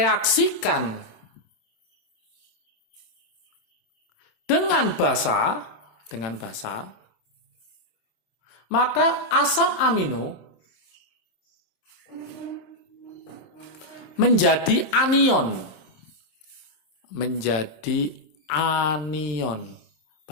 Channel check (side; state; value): right; late; 26 ms